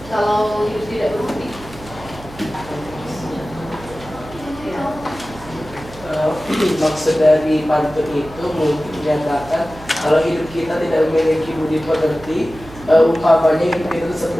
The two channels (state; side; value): noise; right; hum, 18 dB below the sound